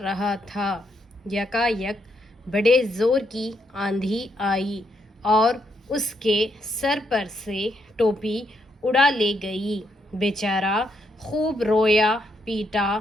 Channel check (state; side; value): normal; both; correlation 0.77